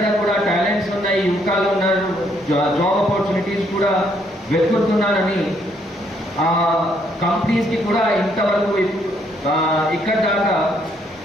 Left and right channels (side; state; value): both; normal; correlation 0.70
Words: కూడా టాలెంట్స్ ఉన్నాయి, యువకాలు ఉన్నారు, జాబ్ ఆపర్చునిటీస్ కూడా వెతుకుతున్నారని కంపెనీస్కి కూడా ఇంతవరకు ఇక్కడ దాకా